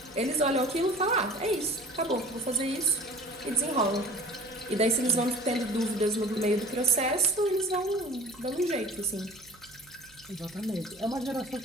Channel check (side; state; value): right; noise; hum, 27 dB below the sound